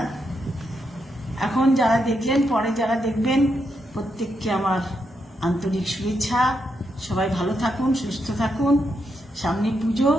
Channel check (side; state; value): both; normal; correlation 0.82